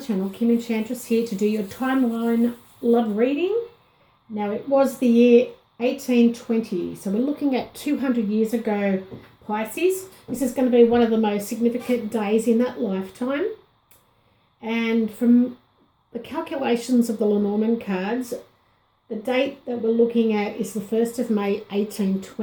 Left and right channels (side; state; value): both; identical; correlation 1.00